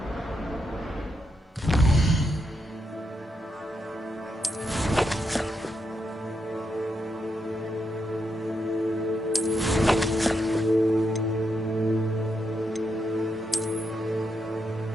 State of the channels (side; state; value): both; normal; correlation 0.82